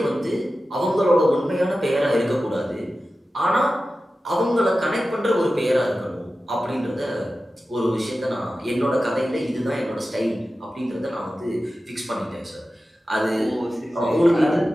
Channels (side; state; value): both; normal; correlation 0.94